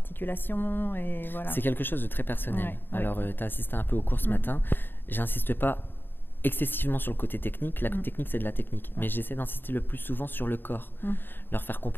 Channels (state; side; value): late; right; 0.096 ms